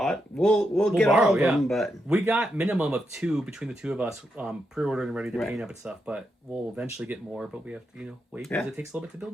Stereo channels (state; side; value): normal; both; correlation 0.83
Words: we'll get borrow, all of them. But we got minimum of 2 between the 2 of us pre-ordered and ready to paint up and stuff. But we'll eventually get more. But we have to wait because it takes a little bit to build